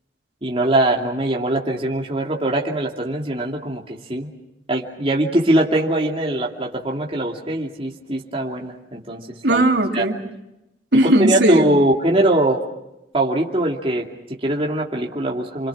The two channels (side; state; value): both; normal; correlation 0.45